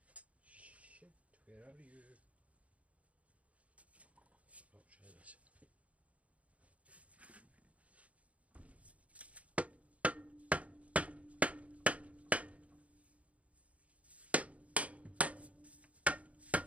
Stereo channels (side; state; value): left; late; 0.066 ms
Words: Shit, where are you? I'll try this.